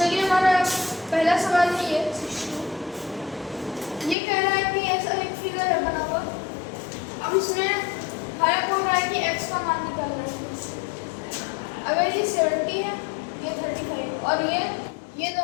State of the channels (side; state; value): right; drops out; at 4.2 s